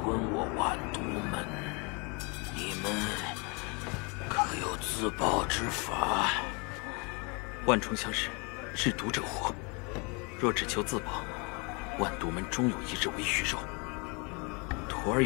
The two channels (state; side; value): quieter; right; 31.4 dB